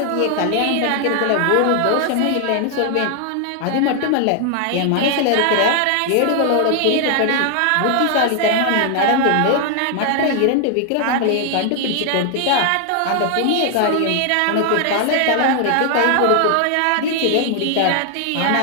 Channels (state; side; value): different; both; correlation 0.00